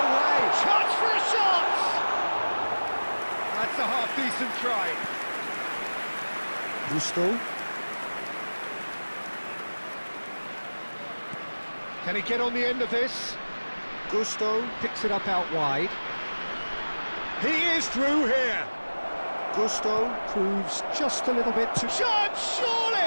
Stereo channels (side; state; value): both; inverted; correlation -1.00